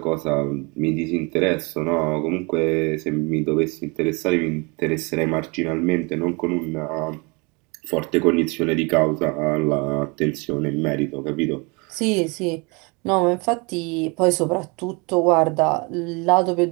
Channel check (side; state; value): left; quieter; 29.5 dB